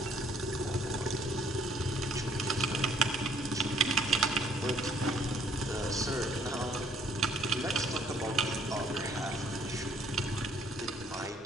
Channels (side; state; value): both; normal; correlation 0.63